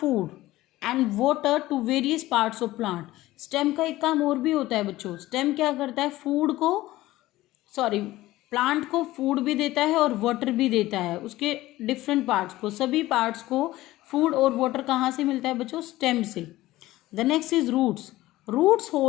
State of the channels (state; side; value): quieter; right; 16.9 dB